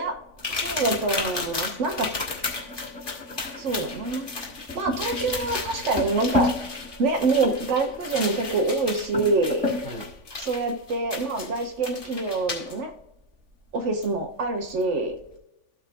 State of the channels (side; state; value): left; late; 3.4 ms